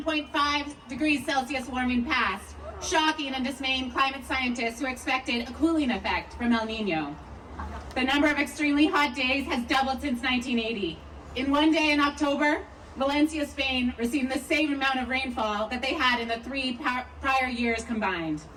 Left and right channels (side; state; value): both; identical; correlation 1.00